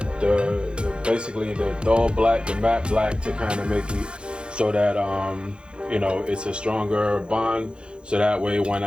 basically the dull black, the matte black, to kind of make it so that you know, it's a stronger bond, so that way when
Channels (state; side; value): late; left; 0.054 ms